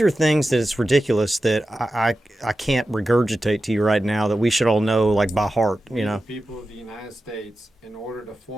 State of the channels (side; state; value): both; normal; correlation 0.93